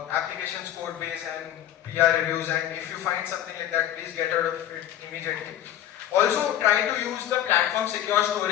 code base and PR reviews, and if you find something like that, please get out of it immediately. Also, try to use the platform secure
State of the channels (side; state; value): right; quieter; 11.7 dB